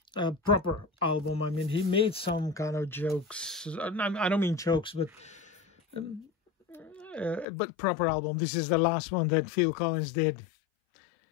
proper album. I mean, he made some kind of jokes. I don't mean jokes, but proper album. This is the last one that Phil Collins did.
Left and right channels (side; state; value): right; drops out; at 7.5 s